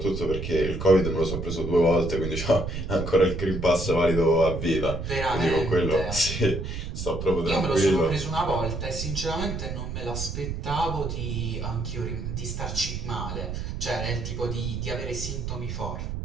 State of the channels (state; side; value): noise; right; rumble, 5 dB below the sound